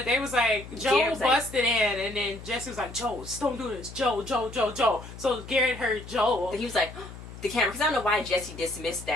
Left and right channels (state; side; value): noise; left; hum, 14 dB below the sound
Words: they was like, Joe busted in, and then Jesse was like, Joe, don't do this. Joe. So Garrett heard Joe. And he was like, the camera, because I don't know why Jesse dismissed